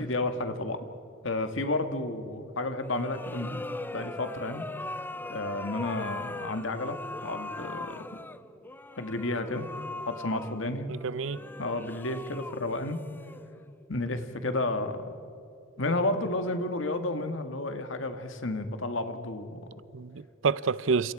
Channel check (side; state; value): both; normal; correlation 0.04